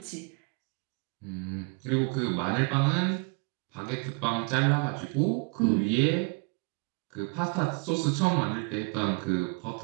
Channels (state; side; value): quieter; left; 33.7 dB